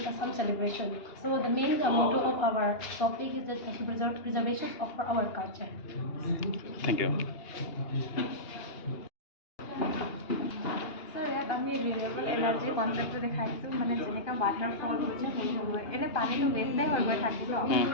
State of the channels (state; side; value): late; right; 2.8 ms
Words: some celebration. So the main motto of our topic is that the preservation of our culture. Thank you. আমি renewable energy কনচেপ্টটো দেখাইছোঁ মানে যেনেকৈ water fall হৈছে হৈ হ'ব এনে পানীটো ৱেষ্টেই হৈ গৈ থাকিব